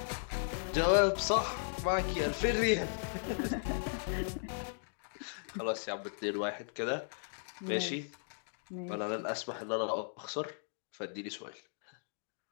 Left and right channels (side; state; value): right; silent; digital silence